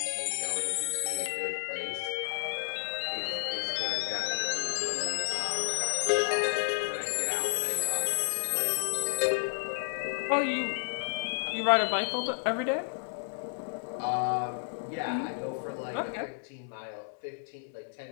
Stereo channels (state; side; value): silent; right; digital silence